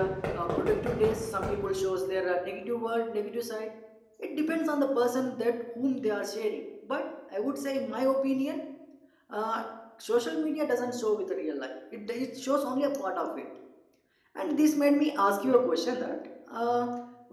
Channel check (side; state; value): both; identical; correlation 1.00